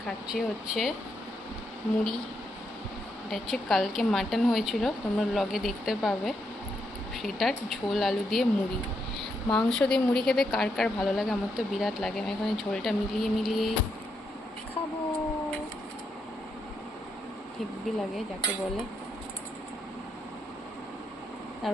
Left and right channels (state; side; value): normal; both; correlation 0.80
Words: খাচ্ছি হচ্ছে মুড়ি। এটা হচ্ছে কালকে মাটন হয়েছিল, তোমরা ব্লগে দেখতে পাবে। সেটার ঝোল আলু দিয়ে মুড়ি। মাংস দিয়ে মুড়ি খেতে কার কার ভালো লাগে? আমার তো বিরাট লাগে। আমি এখানে ঝোলটা মিলিয়ে মিলিয়ে খাবো, হেব্বি লাগে যাকে বলে।